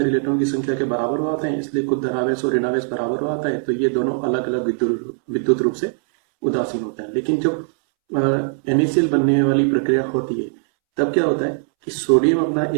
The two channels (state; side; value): silent; left; 66 dB below the other